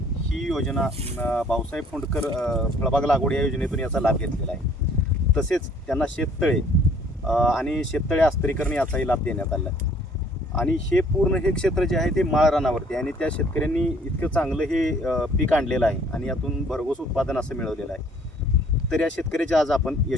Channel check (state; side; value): normal; both; correlation 0.58